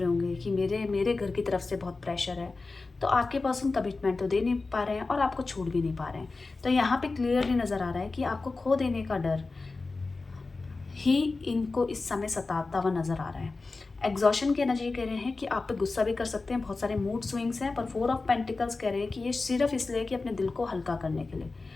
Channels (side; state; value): right; quieter; 3.7 dB